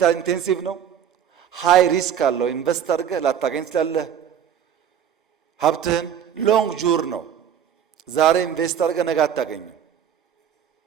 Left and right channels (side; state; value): left; quieter; 9.0 dB